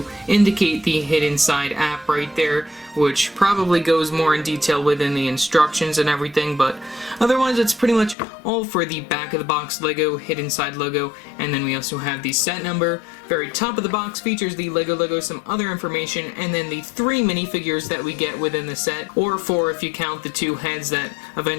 indicate the Hidden Side app right there, which probably goes more in detail within the instructions and everything, but otherwise it's pretty much all for the back of the box LEGO Hidden Side logo. And then we also have the set number. Very top of the box features the LEGO logo, some other information, and then the 3 minifigures that we get within the set, or 4 if you count the 2 heads that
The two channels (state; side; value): drops out; right; at 8.2 s